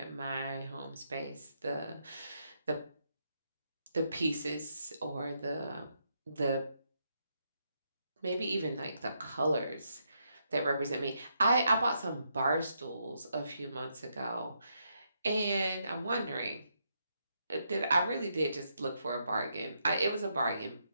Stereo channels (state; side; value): inverted; both; correlation -0.79